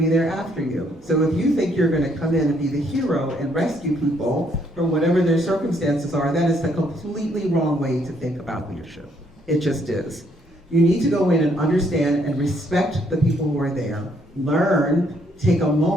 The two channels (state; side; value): normal; both; correlation 0.69